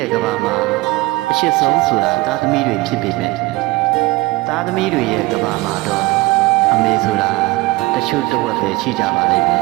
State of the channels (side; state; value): left; quieter; 21.2 dB